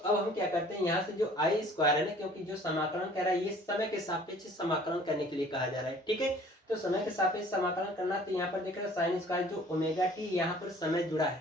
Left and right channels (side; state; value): both; normal; correlation 0.52